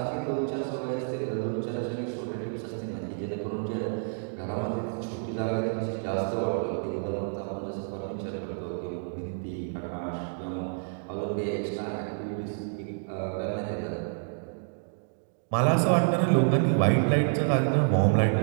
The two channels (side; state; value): left; silent; digital silence